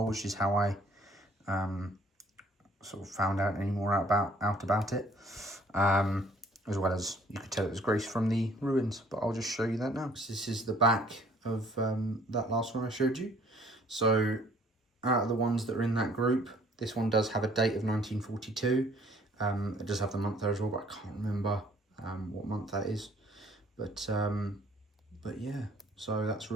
which is how I sort of found out any more out about it. As well as you could tell it was Greece from the ruins, but I'll just show you that now. So this is the back of that last one I showed you. So out of the ones that are in that group, this one does have a date of 1942. It does have the month there as well, but I can't remember what month that is. But yeah, so that's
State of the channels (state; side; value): normal; both; correlation 0.58